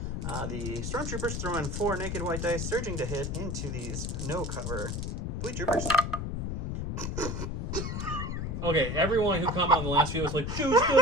The Stormtroopers throwing 4 naked white dice, surging to hit into these no-cover Fleet Troopers. Okay, everyone who commented on the last video was like, "Joe's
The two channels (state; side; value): noise; left; rumble, 3 dB below the sound